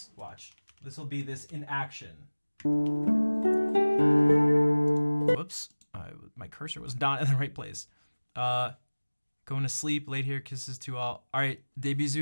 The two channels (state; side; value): inverted; both; correlation -1.00